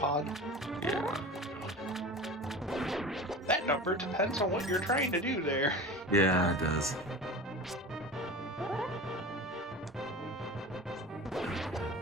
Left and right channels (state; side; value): normal; both; correlation 0.33